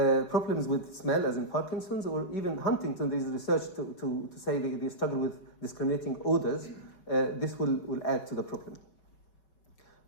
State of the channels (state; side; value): late; right; 5.3 ms